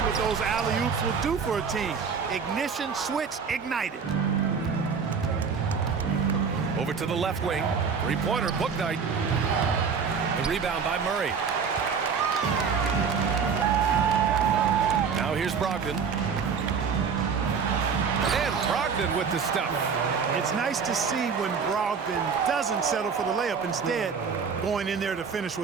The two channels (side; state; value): left; quieter; 6.0 dB